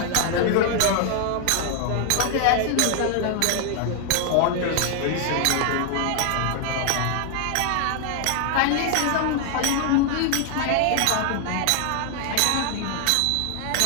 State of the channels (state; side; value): different; both; correlation 0.00